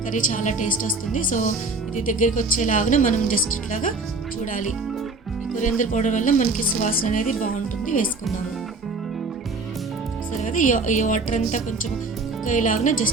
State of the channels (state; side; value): quieter; left; 3.6 dB